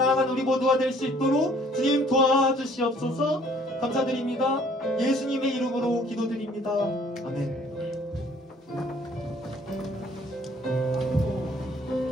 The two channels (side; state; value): both; normal; correlation 0.58